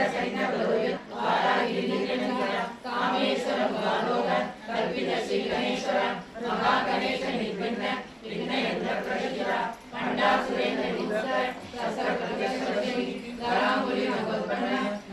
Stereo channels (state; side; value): identical; both; correlation 1.00